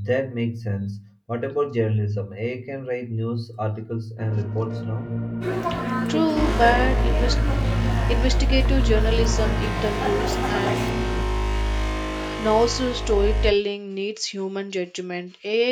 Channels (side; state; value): both; identical; correlation 1.00